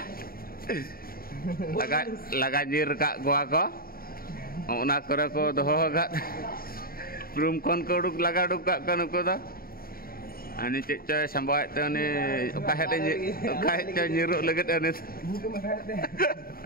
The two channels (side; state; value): right; late; 0.43 ms